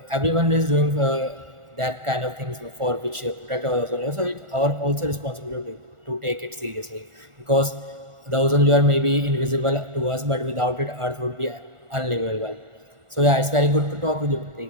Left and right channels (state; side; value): late; left; 1.4 ms